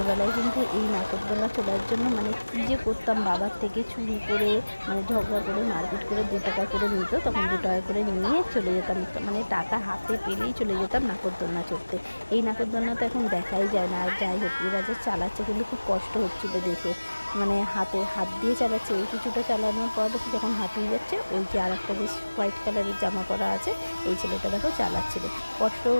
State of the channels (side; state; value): both; inverted; correlation -1.00